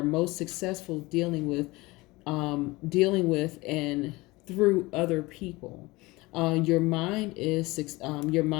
most successful dealing with dealing with and through other people. Your mind is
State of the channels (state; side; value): quieter; right; 22.0 dB